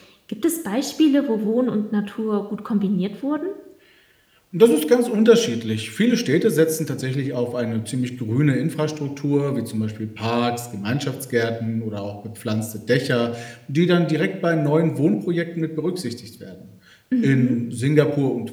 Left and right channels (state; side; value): identical; both; correlation 1.00